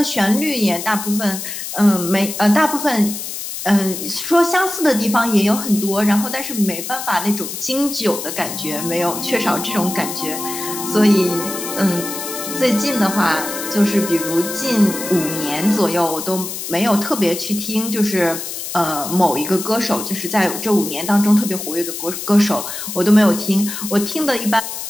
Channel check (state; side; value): noise; left; hiss, 7 dB below the sound